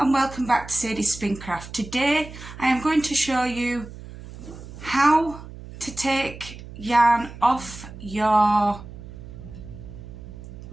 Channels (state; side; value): noise; right; hum, 14 dB below the sound